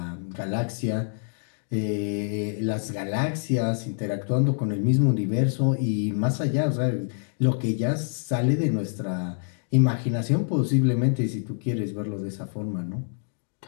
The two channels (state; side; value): silent; right; digital silence